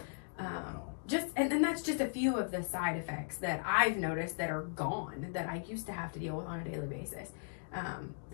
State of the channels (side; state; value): right; silent; digital silence